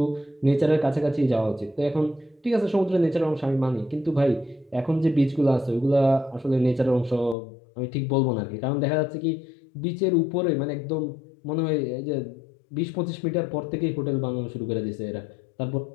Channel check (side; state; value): right; drops out; at 7.4 s